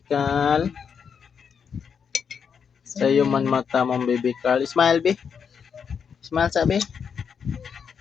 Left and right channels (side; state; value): right; quieter; 6.8 dB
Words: Carl. Sa'yo man mata mong Bibi Carl. Smile, Bi. Smile, sabi.